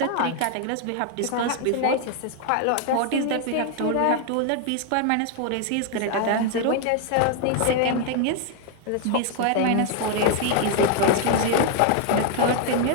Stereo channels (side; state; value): both; different; correlation 0.00